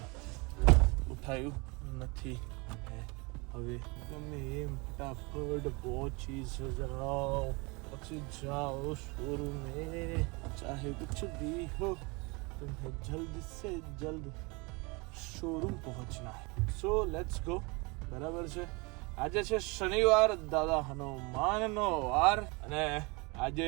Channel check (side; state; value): left; quieter; 27.8 dB